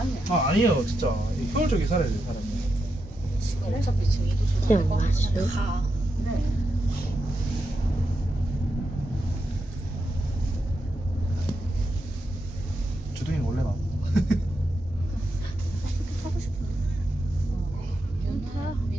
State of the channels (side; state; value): both; normal; correlation 0.85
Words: 아니에요 진짜 효율적이게 살아야 돼 사람이. 지금 어차피 지금 이도 그냥 조절될 거 왔어요? 같은데 가. 주둥이는 원래 나. 타고 싶은데.